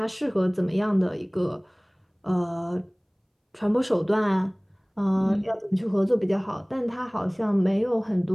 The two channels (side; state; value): both; identical; correlation 1.00